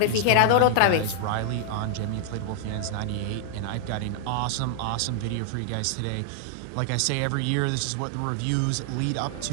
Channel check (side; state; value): both; different; correlation -0.01